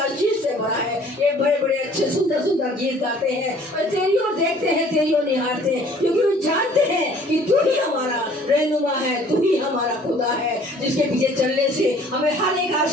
से भरा है, ये बड़े बड़े अच्छे सुंदर सुंदर गीत गाते हैं और तेरी ओर देखते हैं, तेरी ओर निहारते हैं, क्योंकि वो जानते हैं कि तू ही हमारा रहनुमा है, तू ही हमारा खुदा है जिसके पीछे चलने से हमें हर एक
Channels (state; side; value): normal; both; correlation 0.54